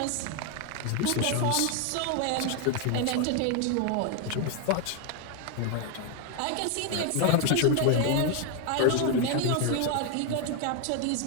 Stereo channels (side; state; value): both; different; correlation 0.01